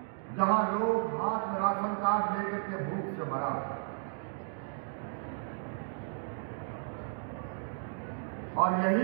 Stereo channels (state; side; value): silent; left; 55 dB below the other